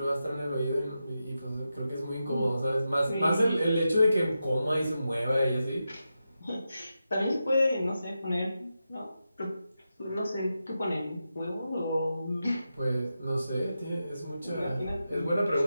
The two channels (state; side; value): inverted; both; correlation -0.89